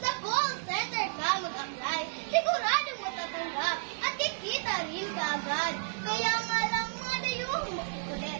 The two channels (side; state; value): left; silent; digital silence